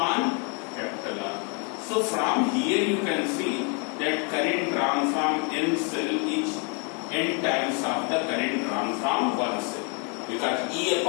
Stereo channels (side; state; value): right; quieter; 36.1 dB